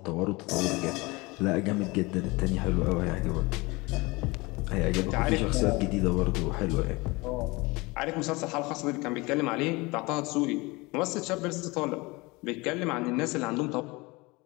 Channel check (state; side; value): quieter; right; 24.2 dB